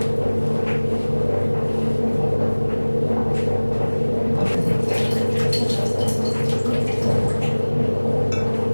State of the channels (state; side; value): inverted; both; correlation -1.00